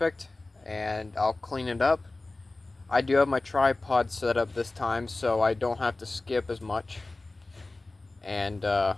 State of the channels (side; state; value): right; quieter; 3.1 dB